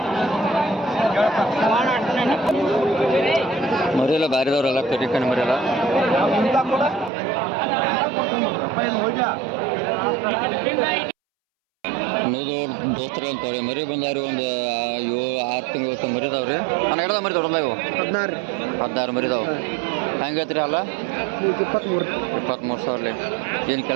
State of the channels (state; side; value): drops out; left; at 7.1 s